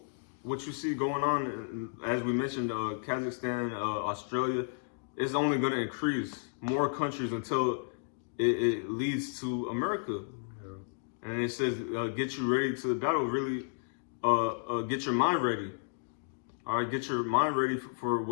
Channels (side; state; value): right; silent; digital silence